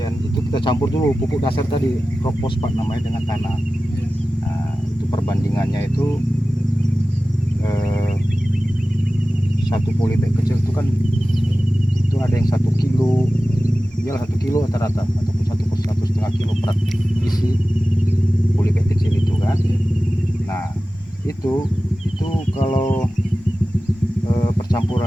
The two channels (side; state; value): both; normal; correlation 0.95